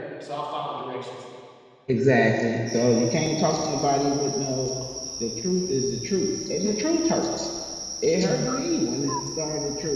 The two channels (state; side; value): identical; both; correlation 1.00